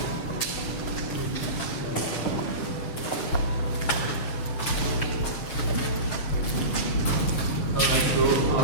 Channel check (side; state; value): right; late; 7.1 ms